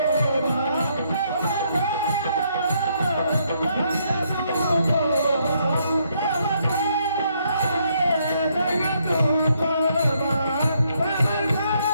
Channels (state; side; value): inverted; both; correlation -0.72